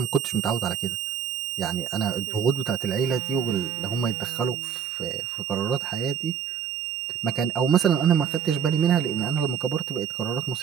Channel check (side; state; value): left; quieter; 7.8 dB